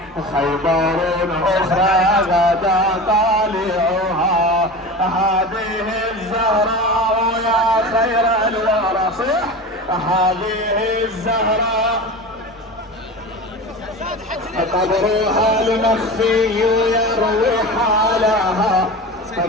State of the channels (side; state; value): both; normal; correlation 0.30